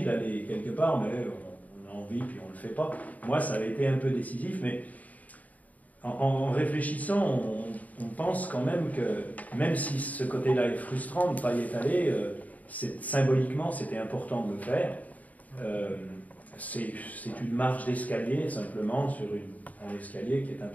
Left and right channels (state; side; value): late; right; 0.074 ms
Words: d'aller quelque part, mais on a envie, puis on ne le fait pas. Moi, ça avait été un peu décisif, mais en réfléchissant, on pense quand même que, même si ce côté-là est frustrant de ne pas y être allé, symboliquement, c'était important de le faire. C'est une marche d'escalier, simplement, sur un escalier qui est un